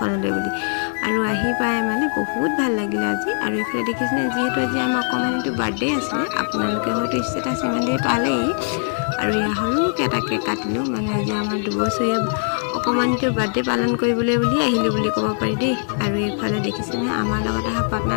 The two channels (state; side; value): silent; right; 65 dB below the other